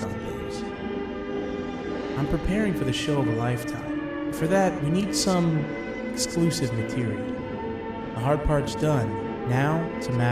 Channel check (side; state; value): both; identical; correlation 1.00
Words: on things. I'm preparing for the show of a lifetime. For that, we need some exclusive material. The hard part's done. Now, it's a